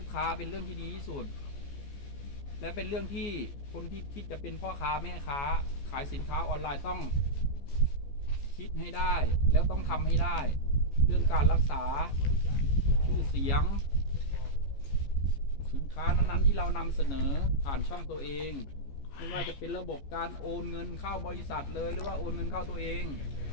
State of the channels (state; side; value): late; right; 14 ms